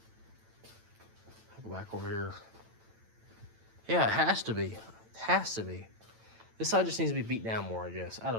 Go back over here. Yeah, it has to be. It has to be. This side just needs to be beat down more, I guess. I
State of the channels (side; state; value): left; late; 9.0 ms